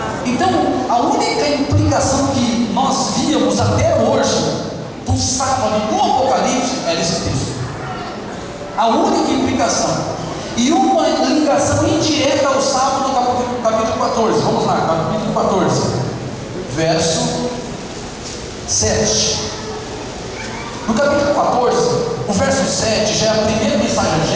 Então, a única implicação que nós víamos até hoje do sábado no Apocalipse era esse texto. A única implicação. E uma ligação indireta ao sábado no capítulo 14. Vamos lá, capítulo 14, verso 7. No capítulo 14, o verso 7 já é a primeira mensagem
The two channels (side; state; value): both; identical; correlation 1.00